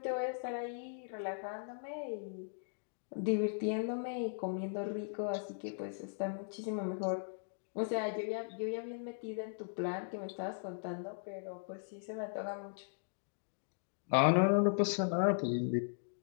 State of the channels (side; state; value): right; silent; digital silence